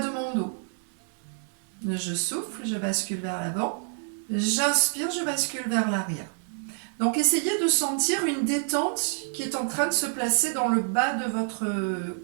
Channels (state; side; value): silent; left; 60 dB below the other